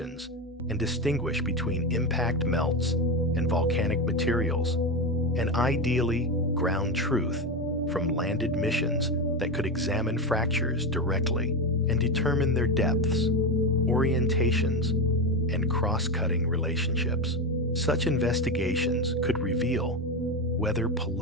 and distinguish between impact melts and volcanic materials, and ideally ground truth from landed missions that could examine fractures directly and determine their depths, orientations, and cross-cutting relationships. Such investigations could reveal whether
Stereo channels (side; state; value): both; normal; correlation 0.16